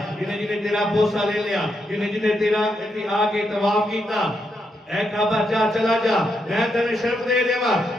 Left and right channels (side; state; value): both; normal; correlation 0.81